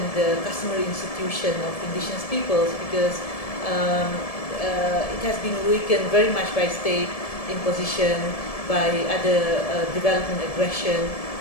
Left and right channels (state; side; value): late; right; 1.7 ms